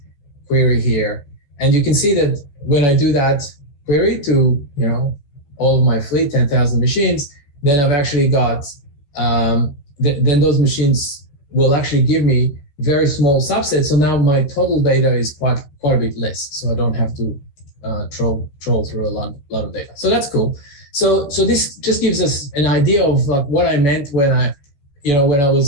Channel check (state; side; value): late; right; 14 ms